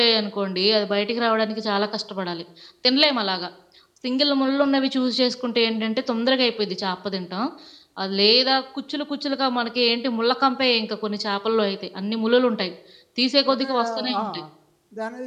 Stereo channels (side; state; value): both; identical; correlation 1.00